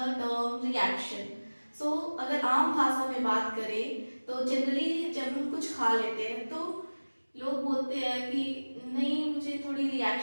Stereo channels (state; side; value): inverted; both; correlation -1.00